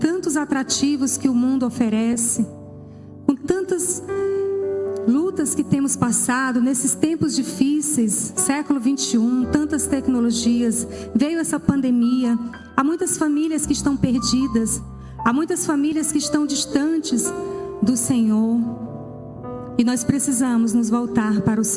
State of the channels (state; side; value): identical; both; correlation 1.00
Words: atrativos que o mundo oferece, com tantas lutas que temos passado nesses tempos difíceis, século 21, tantas tecnologias, veio essa pandemia, há muitas famílias que estão perdidas, há muitas famílias que estão distantes do Senhor, e nós precisamos nos voltar para o